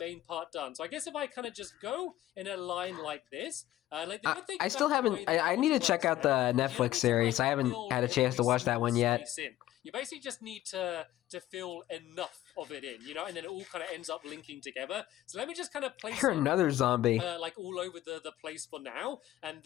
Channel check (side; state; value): right; quieter; 14.2 dB